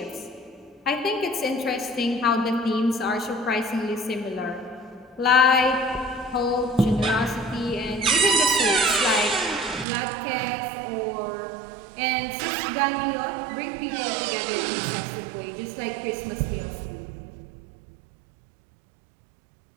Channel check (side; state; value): left; drops out; at 9.9 s